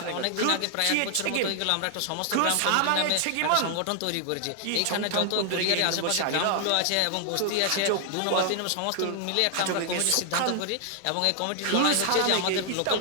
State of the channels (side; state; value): both; different; correlation 0.00